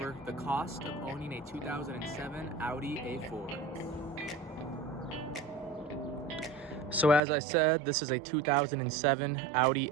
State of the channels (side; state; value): left; drops out; at 7.2 s